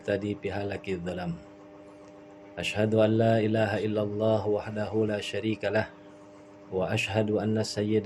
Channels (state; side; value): identical; both; correlation 1.00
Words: bihalakidz dhalam. Asyhadu an la ilaha illallah wahdahu la syarikalah wa asyhadu anna